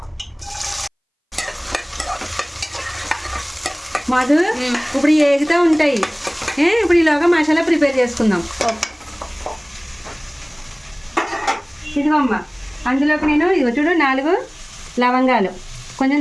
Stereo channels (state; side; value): identical; both; correlation 1.00